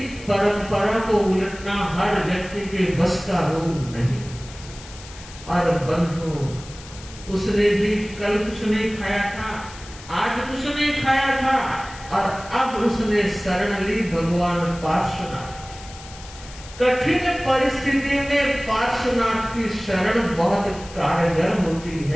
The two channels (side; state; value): left; noise; hiss, 17 dB below the sound